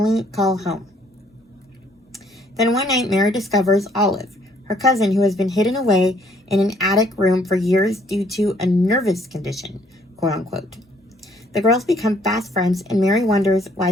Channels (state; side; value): normal; both; correlation 0.63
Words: call home. Then one night, Mary discovers Olive, her cousin who has been hidden away in an attic room for years due to a nervous condition, quote unquote. The girls become fast friends, and Mary wonders